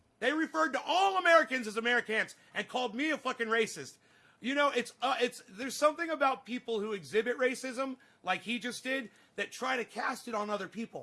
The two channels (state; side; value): identical; both; correlation 1.00